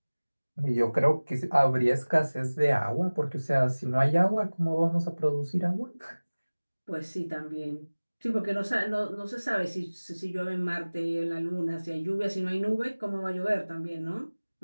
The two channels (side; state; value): both; inverted; correlation -1.00